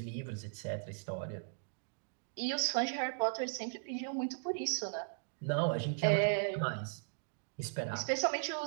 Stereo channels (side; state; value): left; silent; digital silence